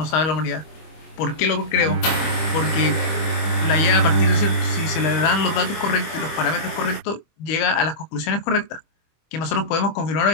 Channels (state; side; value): late; right; 25 ms